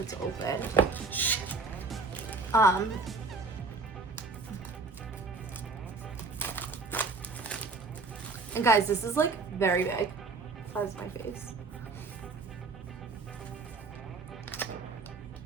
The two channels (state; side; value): quieter; left; 3.9 dB